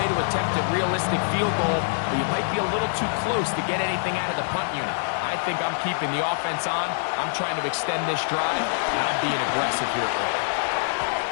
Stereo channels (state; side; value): silent; right; digital silence